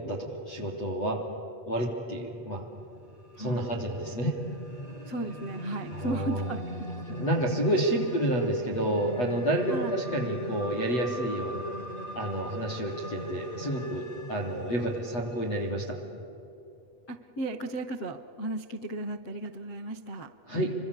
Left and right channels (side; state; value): right; late; 8.3 ms